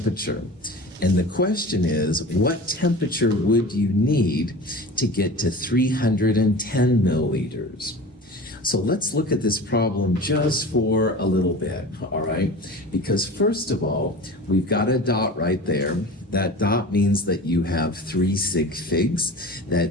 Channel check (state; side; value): normal; both; correlation 0.36